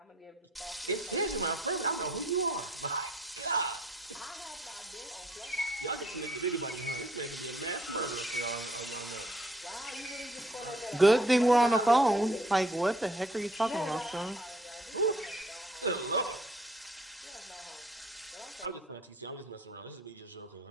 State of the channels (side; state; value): both; normal; correlation 0.60